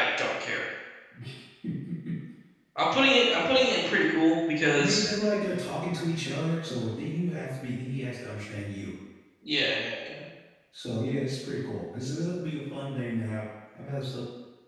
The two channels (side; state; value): both; identical; correlation 1.00